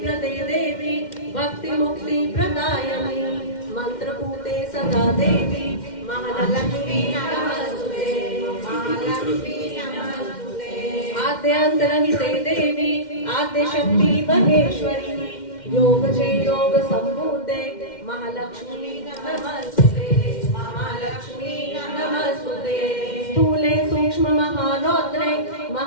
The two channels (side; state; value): right; late; 2.1 ms